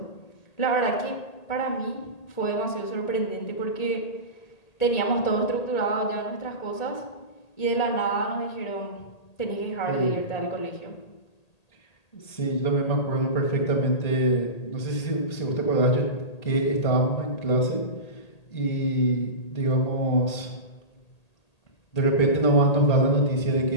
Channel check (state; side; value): late; right; 1.8 ms